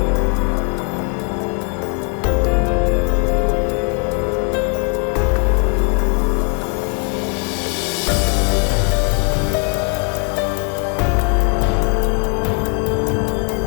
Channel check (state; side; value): quieter; right; 37.1 dB